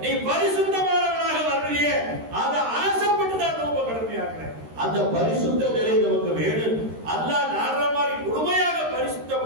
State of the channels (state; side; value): late; left; 13 ms